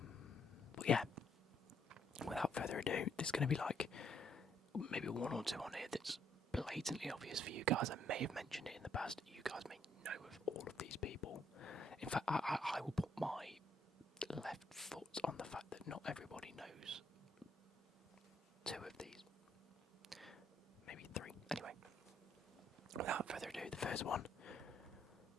But yeah, without further ado, there's going to be like maybe 1 or 2 on here that's blatantly obvious for you guys. I may have mentioned it in the past. You guys may know of all of these people. In fact, I will put my left foot on the fact that not everybody knows 2 of these. Maybe 3. Anyway, without further ado, the first one.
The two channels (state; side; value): normal; both; correlation 0.71